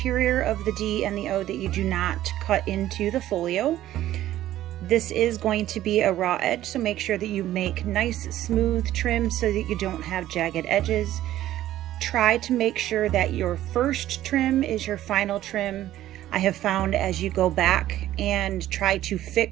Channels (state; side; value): quieter; left; 13.6 dB